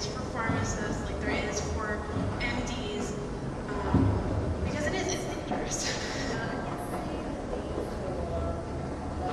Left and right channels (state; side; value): identical; both; correlation 1.00